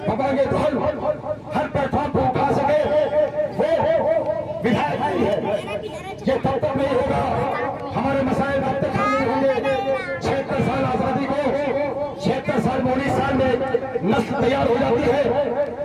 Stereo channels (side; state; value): both; identical; correlation 1.00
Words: बबांगे धौल हर प्लेटफॉर्म पर उठा सके, वो विधायक नहीं है। ये तब तक नहीं होगा, हमारे मसाइल तब तक हल नहीं होंगे। 76 साल आजादी को, 76 साल 19 साल में नस्ल तैयार हो जाती है।